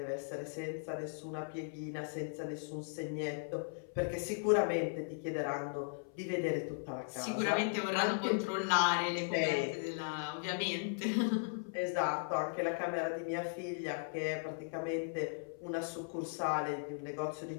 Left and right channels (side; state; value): right; silent; 53 dB below the other